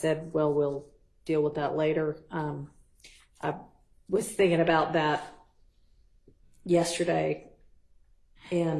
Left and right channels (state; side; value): identical; both; correlation 1.00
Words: well, we'll deal with that later. I was thinking about that yesterday,